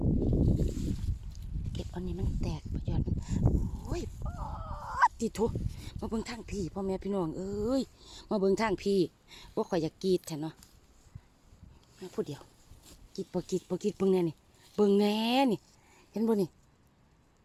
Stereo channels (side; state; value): both; identical; correlation 1.00